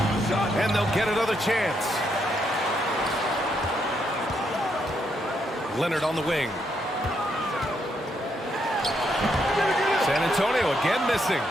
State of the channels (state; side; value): normal; both; correlation 0.77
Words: And they'll get another chance. Leonard on the wing. San Antonio again missing.